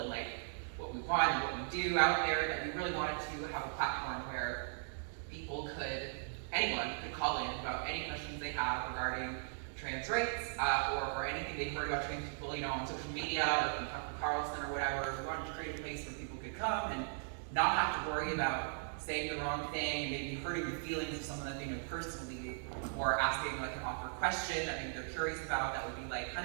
like what we want and what we do out there that we really wanted to have a platform where anyone could call in about any questions they have regarding trans rights or anything they've heard about trans people, on social media or from Tucker Carlson or whatever. We wanted to create a place where people could come and not have to worry about saying the wrong thing and maybe hurting the feelings of someone that they know personally, or asking like an awkward question that maybe they're curious about that would be like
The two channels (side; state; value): left; silent; digital silence